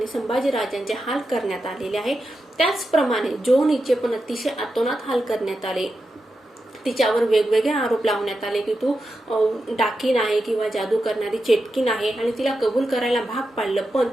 संभाजी राजांचे हाल करण्यात आलेले आहे. त्याचप्रमाणे जॉन हिचे पण अतिशय अतोनात हाल करण्यात आले. तिच्यावर वेगवेगळे आरोप लावण्यात आले की तू डाकीन आहे किंवा जादू करणारी चेटकीन आहे आणि तिला कबूल करायला भाग पाडलं. पण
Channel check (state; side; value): normal; both; correlation 0.89